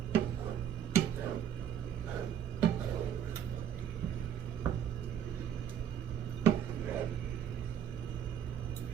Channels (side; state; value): left; quieter; 9.5 dB